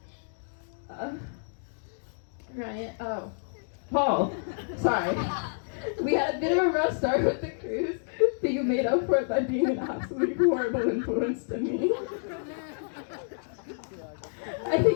Ryan, Paul, sorry. We had a bit of a rough start with the cruise, but you made up for it by being an absolutely horrible influence to me. I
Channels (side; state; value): right; silent; digital silence